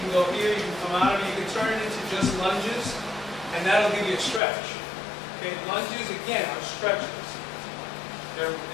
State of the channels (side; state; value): right; drops out; at 4.4 s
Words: can go here, you can come out of it, you can turn it into just lunges, and that'll give you a stretch. Okay, lunges, again, are stretches. They're